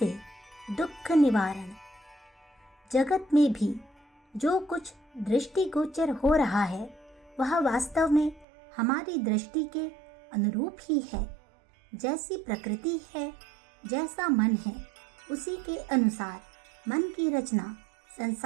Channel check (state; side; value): drops out; left; at 8.5 s